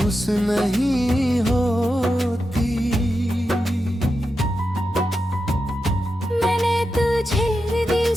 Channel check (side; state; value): both; normal; correlation 0.89